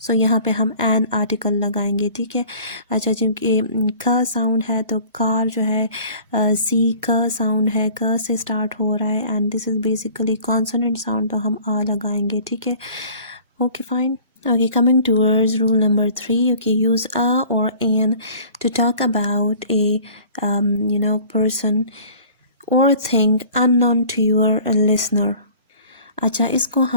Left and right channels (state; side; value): inverted; both; correlation -0.48